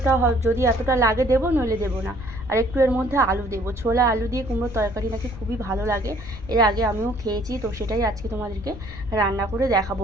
যদি এতটা লাগে দেবো, নইলে দেবো না। আর একটু এর মধ্যে আলু দেবো, ছোলা আলু দিয়ে কুমড়োর তরকারি নাকি খুবই ভালো লাগে। এর আগে আমিও খেয়েছি, তো সেটাই আজকে তোমাদেরকে রান্না করে দেখাবো।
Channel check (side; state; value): left; noise; rumble, 13 dB below the sound